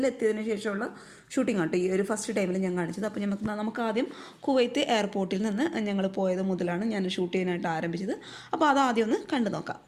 എത്തിയതിന് ശേഷമുള്ള ഷൂട്ടിംഗ് ആട്ടോ ഈ ഒരു ഫസ്റ്റ് ടൈമിൽ ഞാൻ കാണിച്ചത്. അപ്പോൾ നമുക്ക് ആദ്യം കുവൈത്ത് എയർപോർട്ടിൽ നിന്ന് ഞങ്ങൾ പോയത് മുതലാണ് ഞാൻ ഷൂട്ട് ചെയ്യാനായിട്ട് ആരംഭിച്ചത്. അപ്പോൾ അത് ആദ്യം ഒന്ന് കണ്ടു നോക്കാം.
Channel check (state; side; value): identical; both; correlation 1.00